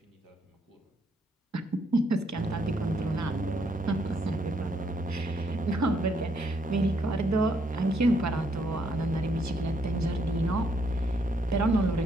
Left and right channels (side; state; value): both; normal; correlation 0.73